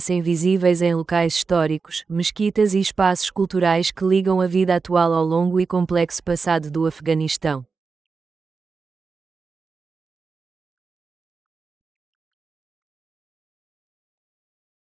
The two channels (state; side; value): quieter; left; 4.8 dB